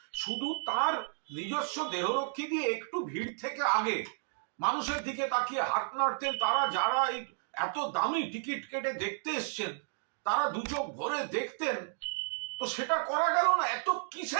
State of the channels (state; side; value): silent; left; digital silence